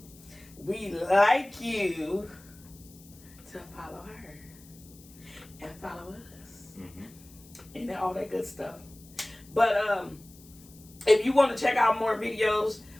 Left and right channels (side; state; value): left; noise; hiss, 23 dB below the sound